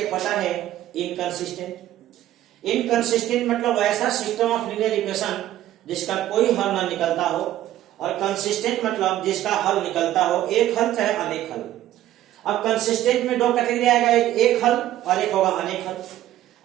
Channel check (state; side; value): quieter; left; 13.5 dB